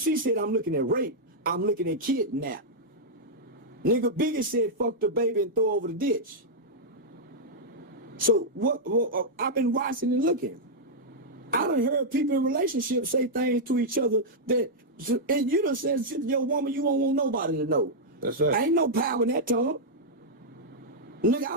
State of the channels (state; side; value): normal; both; correlation -0.06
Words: said, I'm looking at rape. I'm looking at kidnap. Nigga Biggie said, fuck the baby and throw over the ditch. So what I've been watching and looking. I done heard people in relationships say things to each other that, and you done said to your woman, you don't want nobody to know. That's right. Ain't no power in that tongue. Nigga, I